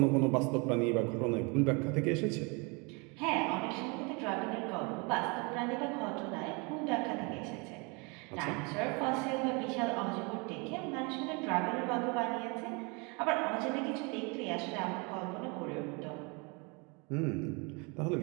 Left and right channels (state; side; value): quieter; left; 30.6 dB